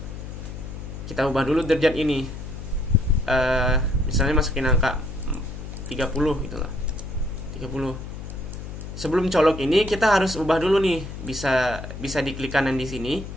Kita ubah dulu derajat ini. Misalnya masukin angka 30 gitu lah. 30. Sebelum colok ini kita harus ubah dulu nih, bisa diklik kanan di sini.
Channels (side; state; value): left; noise; hum, 9 dB below the sound